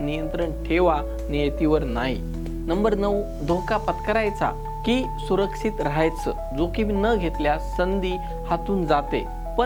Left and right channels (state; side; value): identical; both; correlation 1.00